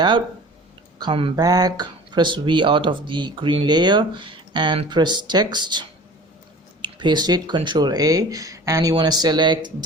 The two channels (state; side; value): normal; both; correlation 0.43